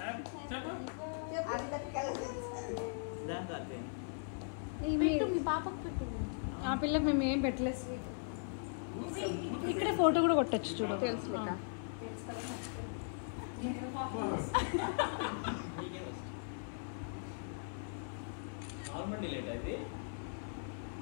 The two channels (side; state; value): right; silent; 52 dB below the other